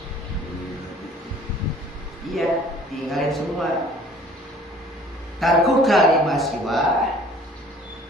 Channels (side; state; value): both; normal; correlation 0.52